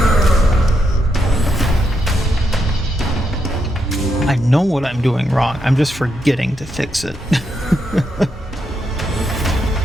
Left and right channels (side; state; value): both; normal; correlation 0.81